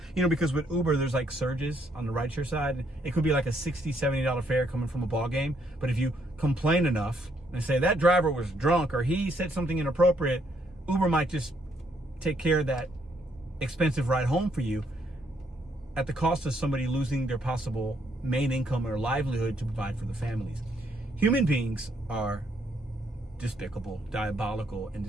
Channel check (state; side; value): normal; both; correlation 0.72